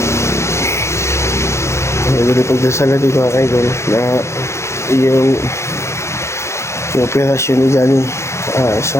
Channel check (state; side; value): late; right; 0.13 ms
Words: Nagulong pagdasal natin mga kaidol na yung operasyon ni Johnny,